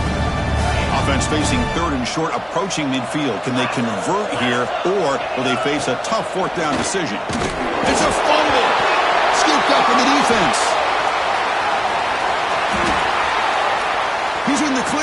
Facing third and short, approaching midfield. Can they convert here, or will they face a tough fourth down decision? It's a fumble. Scooped up in the defense. He's in the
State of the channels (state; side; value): identical; both; correlation 1.00